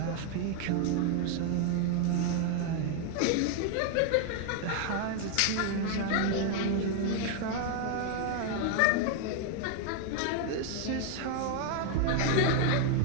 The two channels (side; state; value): both; different; correlation 0.00